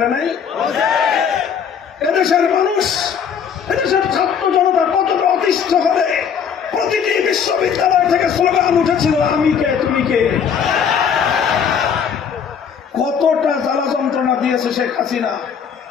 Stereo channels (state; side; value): quieter; right; 7.3 dB